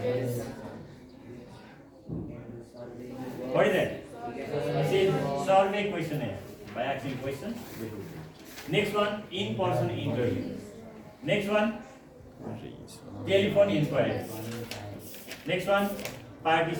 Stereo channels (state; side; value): identical; both; correlation 1.00